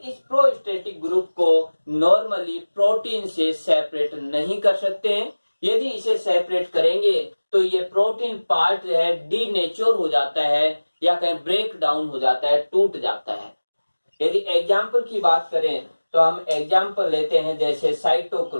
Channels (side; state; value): both; inverted; correlation -1.00